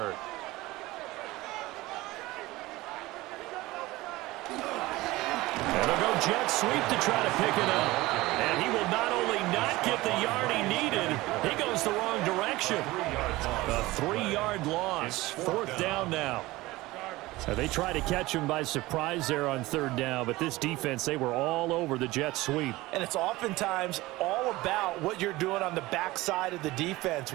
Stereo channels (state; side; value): quieter; left; 19.4 dB